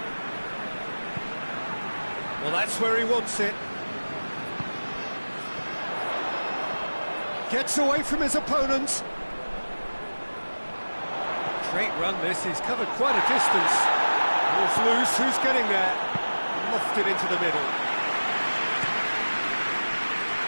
Well, that's where he wants it. Gets away from his opponents. Great run this, he's covered quite a distance. Ball's loose, who's getting there? Lofted into the middle.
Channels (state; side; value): inverted; both; correlation -1.00